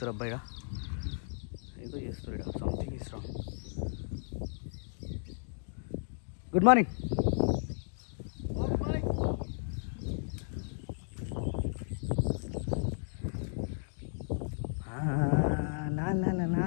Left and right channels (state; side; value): silent; right; digital silence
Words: అబ్బాయిగా? ఏదో చేస్తారు ఇక్కడ, something is wrong. Good morning.